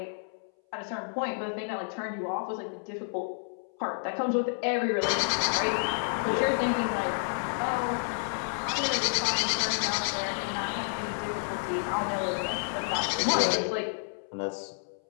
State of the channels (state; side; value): silent; right; 58 dB below the other